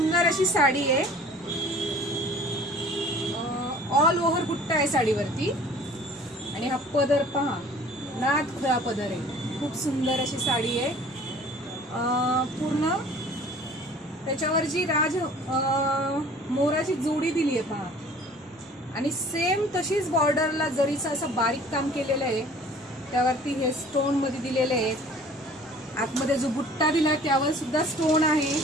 अशी साडी आहे. ऑल ओव्हर बुट्टा आहे साडीवरती आणि हा पदर पहा, नाद खुळा पदर आहे. खूप सुंदर अशी साडी आहे. पूर्ण त्याच्यावर जी मोराची जोडी दिली आहे पहा, आणि सेम तशीच बॉर्डरला जरीचं असं बारीक काम केलेलं आहे. त्यावरती हे स्टोन मध्ये दिलेले आहे. आतमध्ये जो बुट्टा दिला त्यावर सुद्धा स्टोन आहे,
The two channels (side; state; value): both; normal; correlation 0.49